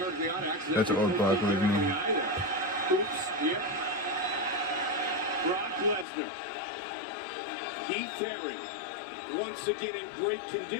That's old Brock Lesnar. Brock Lesnar. Heath Herring. Once again in great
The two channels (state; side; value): drops out; right; at 6.1 s